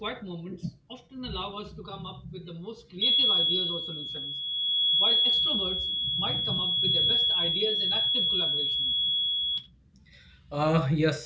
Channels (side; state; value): both; identical; correlation 1.00